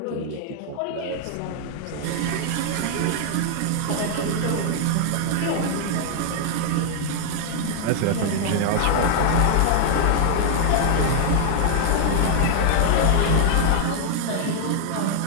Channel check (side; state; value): both; different; correlation 0.00